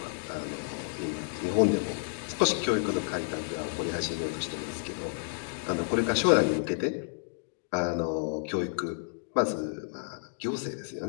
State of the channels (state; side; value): silent; right; digital silence